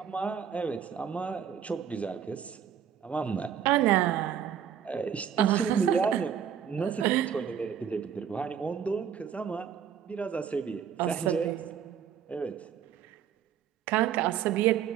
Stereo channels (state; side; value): quieter; left; 8.5 dB